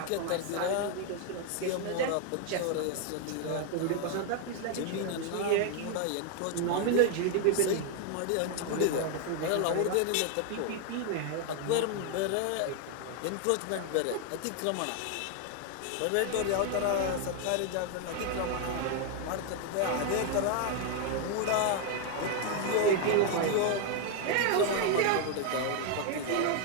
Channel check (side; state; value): both; different; correlation 0.00